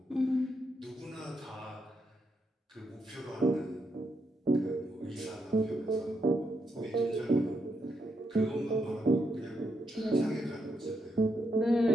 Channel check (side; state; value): both; normal; correlation 0.81